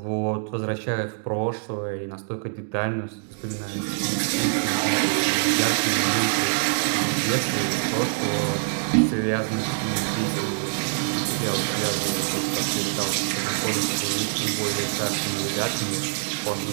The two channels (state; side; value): silent; left; digital silence